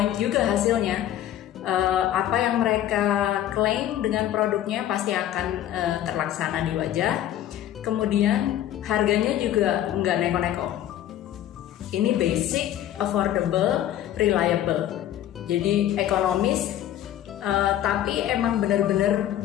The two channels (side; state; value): right; quieter; 11.9 dB